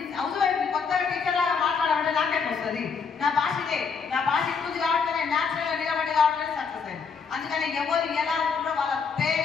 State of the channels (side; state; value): right; quieter; 5.6 dB